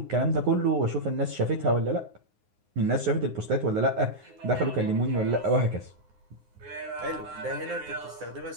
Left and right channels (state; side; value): late; left; 9.6 ms